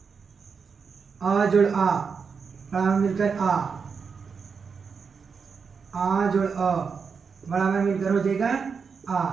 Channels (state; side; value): quieter; left; 5.7 dB